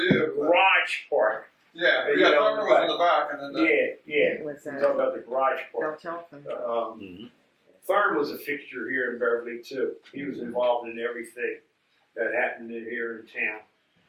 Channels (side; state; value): both; identical; correlation 1.00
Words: you. garage part. Yeah, You yeah. know, Thurman was in the back, and then Yeah. It was We're talking about the garage Bell part. Telephone. Thurm was a fixture here in Beverly too. He was involved in everything that happened in here in town.